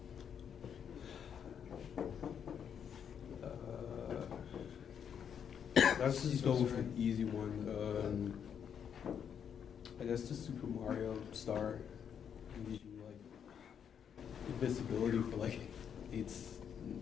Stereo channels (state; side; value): quieter; right; 8.0 dB